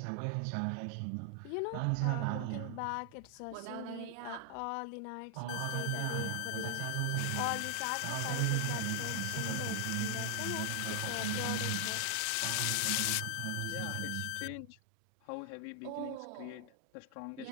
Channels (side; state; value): both; different; correlation 0.00